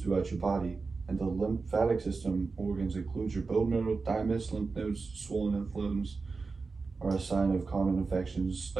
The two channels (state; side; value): quieter; left; 4.3 dB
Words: your body. And the lymphatic system organs include your bone marrow, thymus, lymph nodes, swollen inflames are a sign of common infections